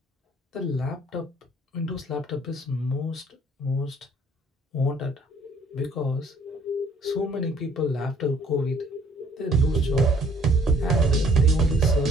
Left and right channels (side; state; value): both; normal; correlation 0.59